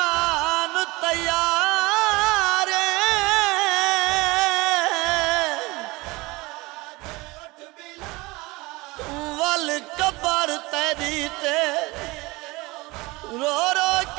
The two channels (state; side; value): quieter; left; 22.8 dB